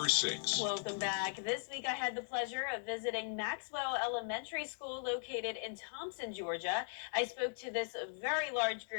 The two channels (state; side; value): silent; right; digital silence